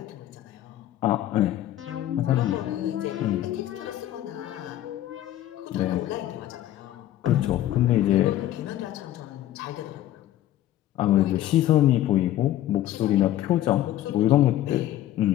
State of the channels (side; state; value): right; quieter; 13.2 dB